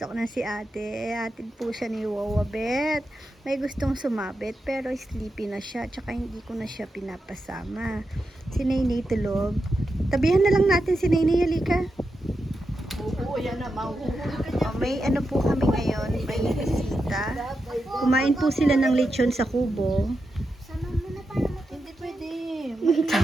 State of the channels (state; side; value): normal; both; correlation 0.88